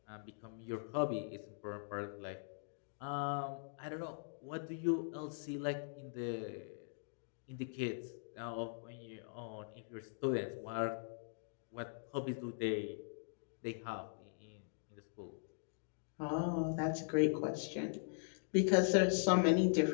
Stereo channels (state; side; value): silent; right; digital silence